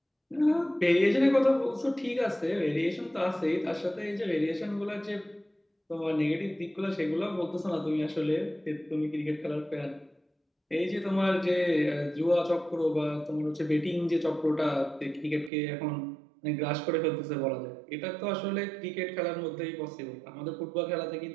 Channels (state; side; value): drops out; left; at 15.5 s